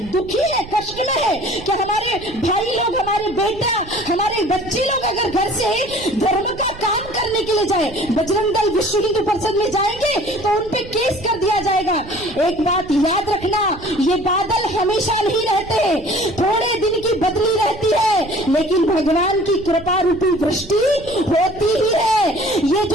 दुखी है, कष्ट में है कि हमारे भाई लोग, हमारे बेटा, हमारे बच्चे लोग अगर घर से धर्म का काम करने के लिए जाए, बजरंग दल विश्व हिंदू परिषद में जाएंगे तो उनपे केस कर दिया जाएगा। एक बात याद रखना, ये बादल हमेशा नहीं रहते, थोड़े दिन की बदली रहती है, लेकिन भगवान की कृपा रूपी वृष्टि होती ही है। ये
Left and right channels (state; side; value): noise; right; rumble, 17 dB below the sound